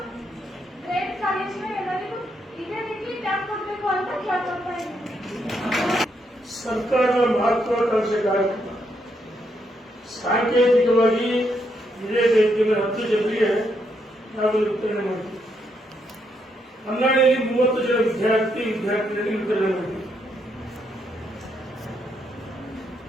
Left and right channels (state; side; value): normal; both; correlation 0.77